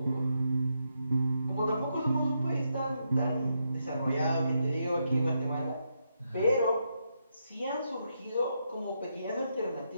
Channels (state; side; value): inverted; both; correlation -0.81